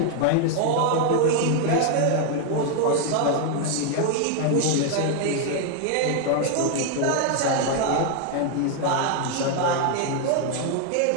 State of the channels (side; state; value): both; different; correlation 0.00